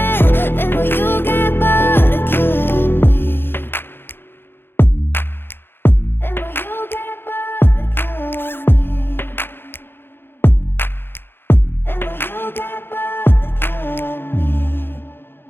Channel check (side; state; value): right; late; 0.10 ms